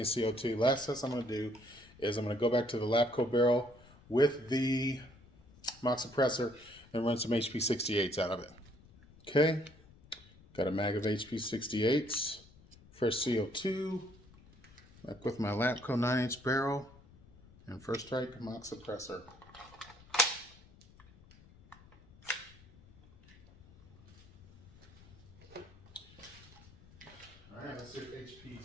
CO2. Last test I'm going to do is I'm going to go back to the Labco barrel with the mock suppressor and run some HP68s out of it. Okay, got a mag of HP68s, fresh CO2, back with my Labco 9-inch barrel, and first strike mock suppressor. Alright, let's see if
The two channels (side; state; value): left; noise; rumble, 24 dB below the sound